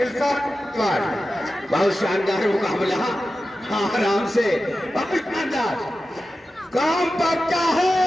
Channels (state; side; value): normal; both; correlation 0.93